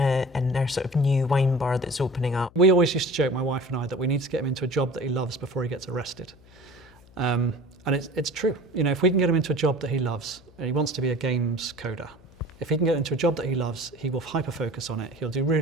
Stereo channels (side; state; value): left; noise; hum, 25 dB below the sound